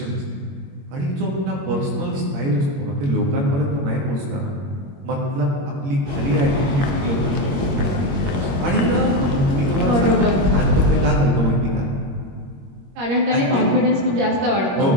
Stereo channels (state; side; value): late; left; 21 ms